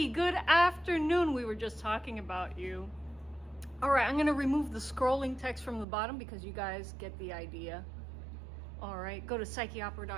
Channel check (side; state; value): left; drops out; at 5.9 s